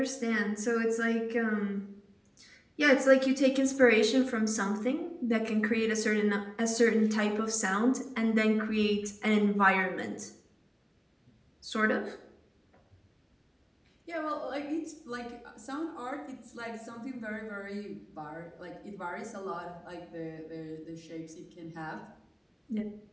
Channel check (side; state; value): both; identical; correlation 1.00